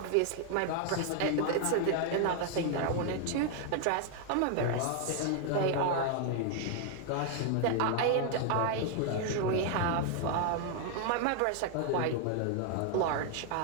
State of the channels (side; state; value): both; different; correlation 0.00